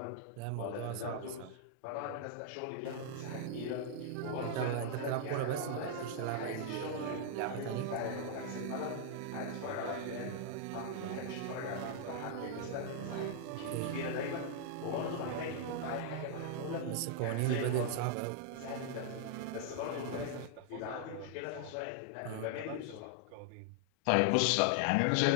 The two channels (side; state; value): both; different; correlation -0.01